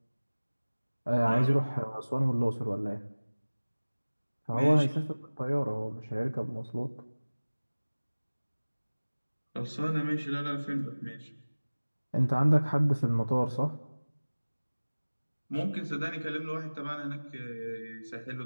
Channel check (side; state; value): both; inverted; correlation -1.00